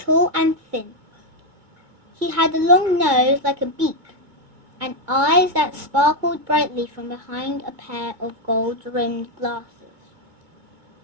and thin. He had a long nose like a beak, and eyes that sparkled brightly from behind a pair of gold-rimmed glasses.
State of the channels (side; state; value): left; late; 2.2 ms